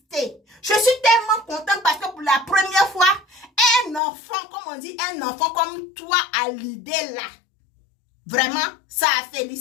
Je suis tellement contente parce que pour la première fois, un enfant, comme on dit, un enfant comme toi a l'idée là. Vraiment, ça a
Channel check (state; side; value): drops out; right; at 4.0 s